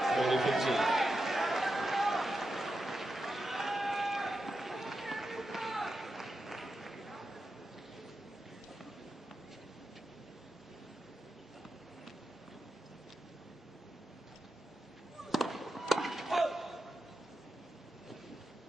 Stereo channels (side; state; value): both; normal; correlation 0.89